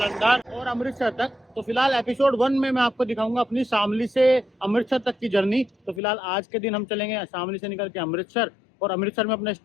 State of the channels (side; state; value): right; drops out; at 6.0 s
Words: और अमृतसर तक। तो फिलहाल एपिसोड 1 में मैं आपको दिखाऊंगा अपनी शामली से अमृतसर तक की जर्नी। तो फिलहाल आज के दिन हम चलेंगे शामली से निकल के अमृतसर, और अमृतसर में अपना